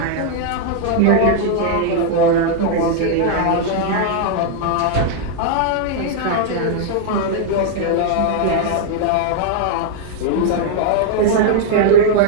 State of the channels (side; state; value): both; different; correlation 0.00